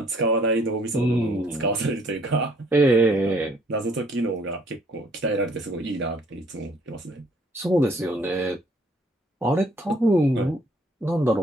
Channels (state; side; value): normal; both; correlation 0.62